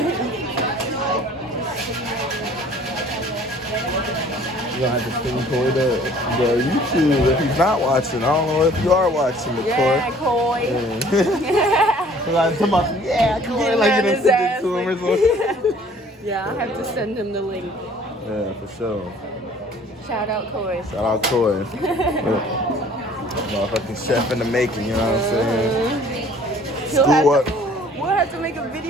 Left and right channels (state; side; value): normal; both; correlation 0.53